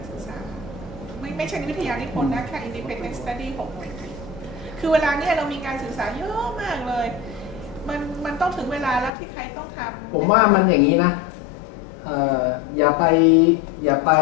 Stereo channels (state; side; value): drops out; right; at 9.1 s